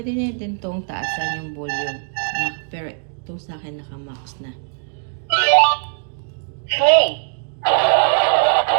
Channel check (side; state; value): left; silent; 59 dB below the other